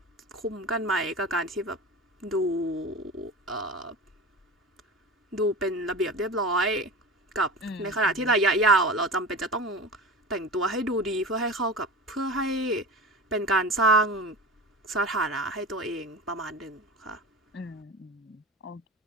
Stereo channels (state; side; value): normal; both; correlation 0.32